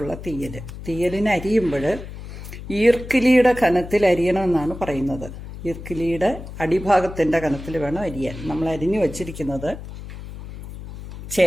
തീയലിന് അരിയുമ്പോൾ ഈർക്കിലിയുടെ കനത്തിൽ അരിയണമെന്നാണ് പറയുന്നത്. ഈർക്കിലിയുടെ അടിഭാഗത്തിൻ്റെ കനത്തിൽ വേണം അരിയാൻ. നമ്മൾ അരിഞ്ഞു വച്ചിരിക്കുന്നത്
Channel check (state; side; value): noise; left; hum, 12 dB below the sound